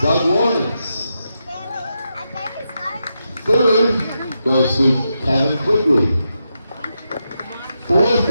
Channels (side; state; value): both; inverted; correlation -0.86